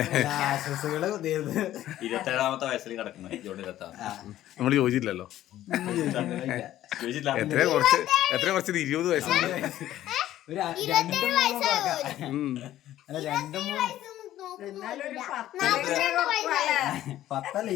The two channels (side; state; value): right; quieter; 13.3 dB